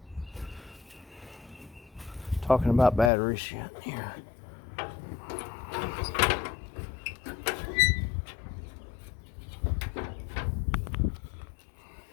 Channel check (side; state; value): right; drops out; at 3.1 s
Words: talking about battery shit here.